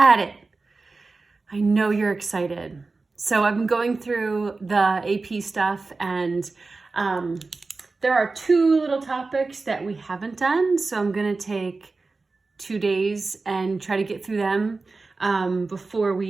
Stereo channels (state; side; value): quieter; left; 3.8 dB